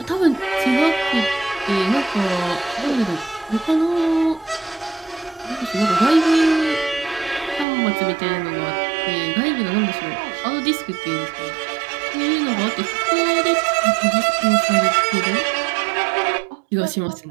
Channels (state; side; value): drops out; left; at 7.7 s